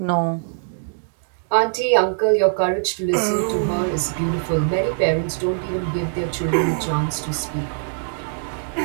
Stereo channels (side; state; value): left; silent; digital silence